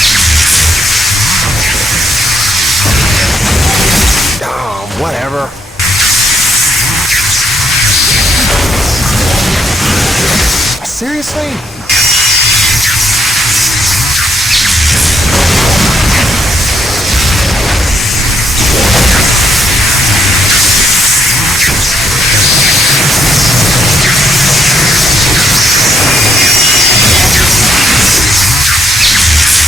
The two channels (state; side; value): normal; both; correlation 0.75